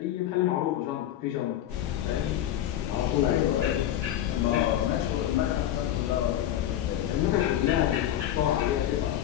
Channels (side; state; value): right; quieter; 11.8 dB